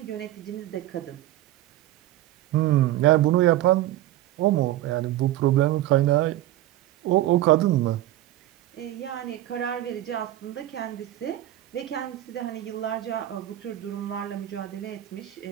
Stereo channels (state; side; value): quieter; left; 14.5 dB